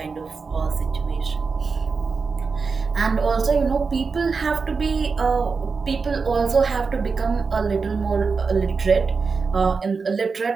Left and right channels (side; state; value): left; quieter; 4.8 dB